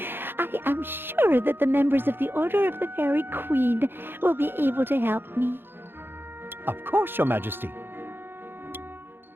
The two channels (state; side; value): late; left; 0.10 ms